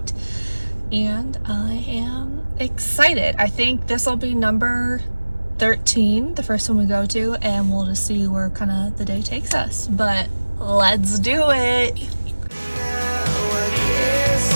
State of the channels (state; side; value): inverted; both; correlation -1.00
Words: And I am excited. I think this will be number 13, the first one we go to, and we'll just see where kind of the day takes us. But let's do it. Now I guess